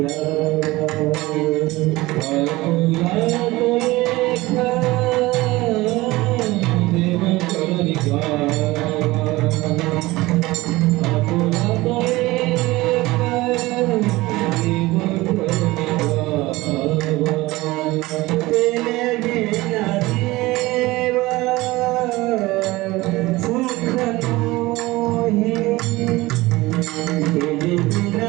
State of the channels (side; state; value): left; quieter; 19.9 dB